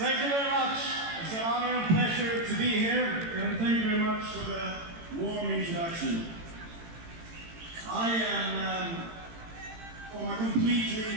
you very much. It's an honor and pleasure to be here, and thank you very much for the warm introduction. I am from a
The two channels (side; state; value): left; late; 18 ms